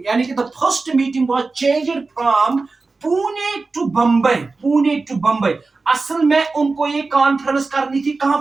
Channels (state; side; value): quieter; left; 3.9 dB